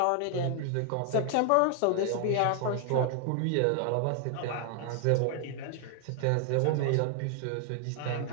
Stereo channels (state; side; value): different; both; correlation 0.00